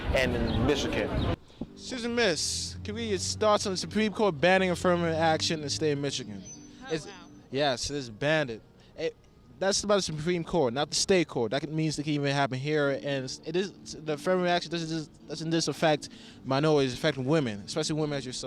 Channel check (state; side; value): identical; both; correlation 1.00